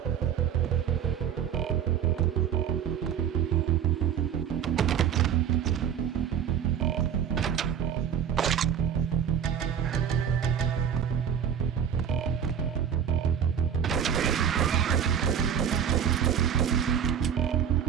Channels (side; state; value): left; quieter; 8.4 dB